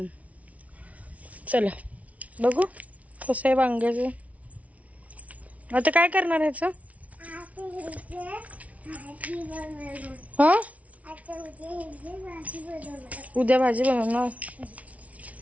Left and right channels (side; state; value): left; late; 0.067 ms